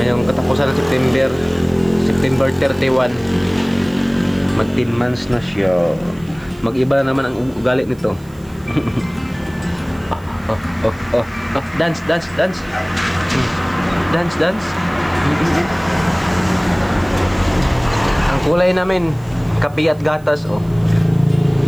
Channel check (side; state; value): right; noise; hiss, 28 dB below the sound